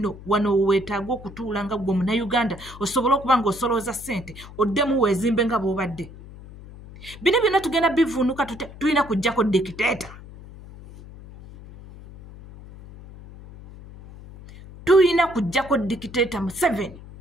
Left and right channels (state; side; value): noise; left; hum, 17 dB below the sound